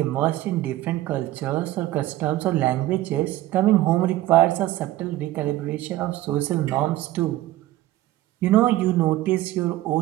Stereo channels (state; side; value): quieter; left; 15.7 dB